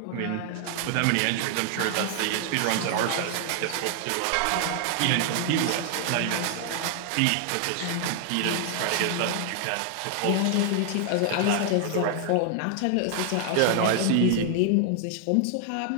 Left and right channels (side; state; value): both; different; correlation 0.00